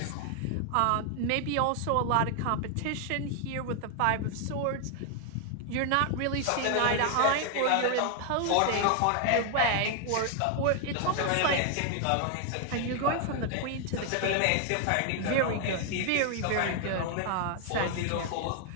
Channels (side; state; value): both; different; correlation 0.00